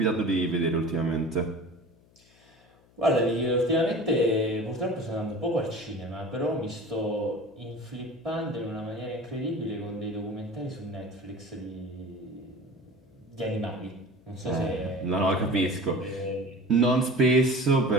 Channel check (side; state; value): left; noise; hum, 30 dB below the sound